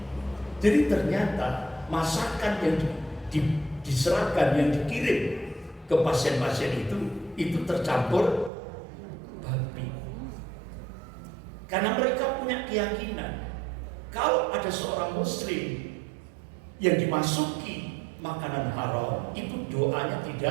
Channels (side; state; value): left; drops out; at 8.5 s